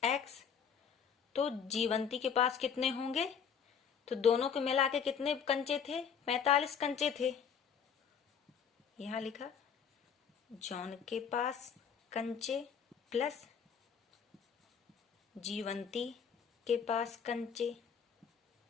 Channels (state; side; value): quieter; right; 7.1 dB